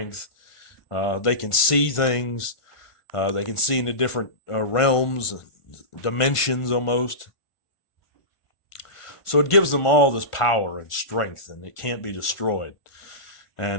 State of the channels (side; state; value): right; late; 1.4 ms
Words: they can see things, they can see into different realms, dimensions almost. So it gives them all this power and strength, and it can't be destroyed.